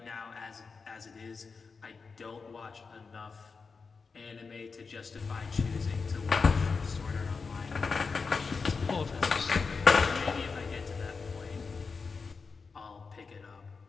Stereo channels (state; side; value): quieter; right; 4.8 dB